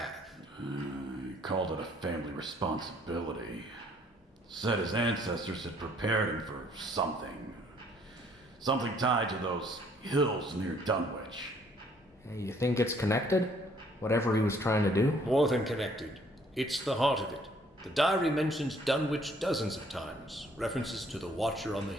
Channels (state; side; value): normal; both; correlation 0.62